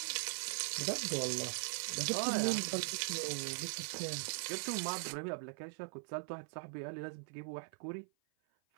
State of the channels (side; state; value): left; silent; 51 dB below the other